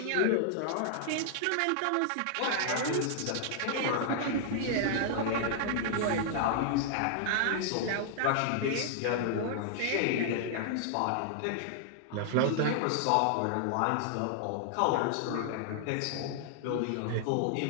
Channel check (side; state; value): both; different; correlation -0.01